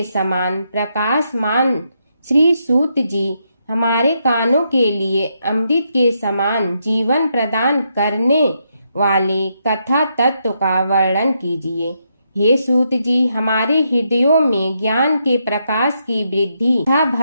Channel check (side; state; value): both; inverted; correlation -0.79